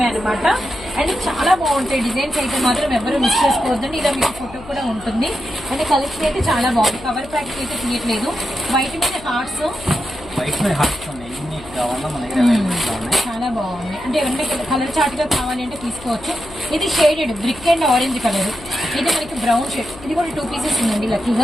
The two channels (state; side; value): noise; left; hum, 17 dB below the sound